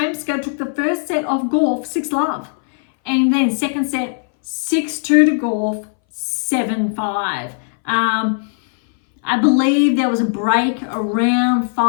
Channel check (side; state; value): right; silent; 63 dB below the other